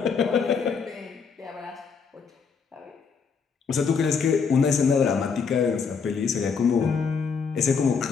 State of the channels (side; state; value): right; quieter; 5.8 dB